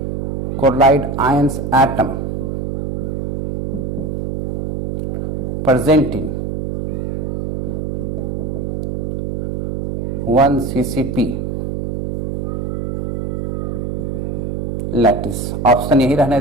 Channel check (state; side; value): noise; right; hum, 2 dB below the sound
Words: chloride ions atom presenting 1 CCP lattice. Option यही रहने